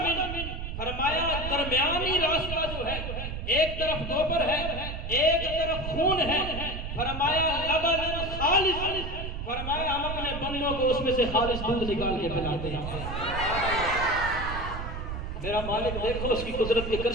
فرمایا درمیانی راستہ جو ہے ایک طرف گوبر ہے ایک طرف خون ہے. فرمایا لبن خالص، فرمایا ہم اپنے بندوں کو اس میں سے خالص دودھ نکال کے پلاتے ہیں. میرا مالک دیکھو اس کی قدرت کے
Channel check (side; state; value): right; noise; rumble, 6 dB below the sound